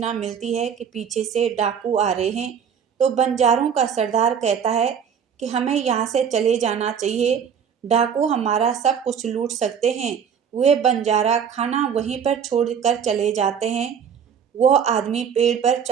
मिलती है कि पीछे से डाकू आ रहे हैं। तो बंजारों का सरदार कहता है कि हमें यहाँ से चले जाना चाहिए, डाकू हमारा सब कुछ लूट सकते हैं। वे बंजारा खाना वहीं पर छोड़कर चले जाते हैं। वह आदमी पेड़ पर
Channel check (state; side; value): quieter; left; 7.5 dB